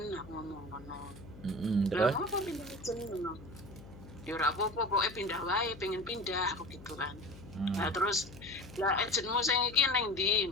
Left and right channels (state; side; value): noise; left; hum, 17 dB below the sound